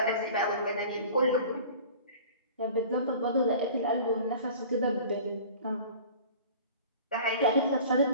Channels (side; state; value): both; inverted; correlation -0.43